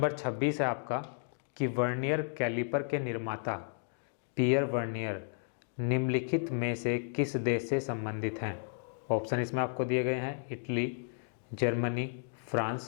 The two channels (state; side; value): silent; right; digital silence